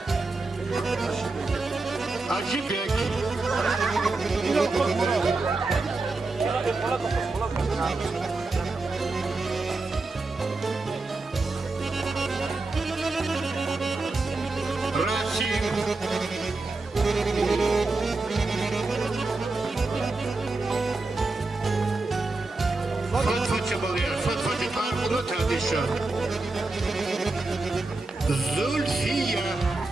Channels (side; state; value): left; quieter; 3.4 dB